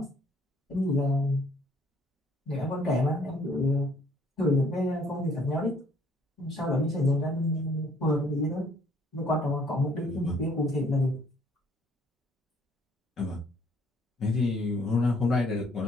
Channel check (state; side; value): normal; both; correlation 0.62